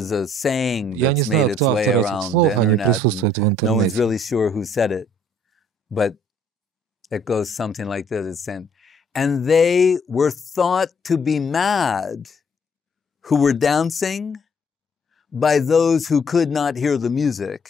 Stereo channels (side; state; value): both; normal; correlation 0.63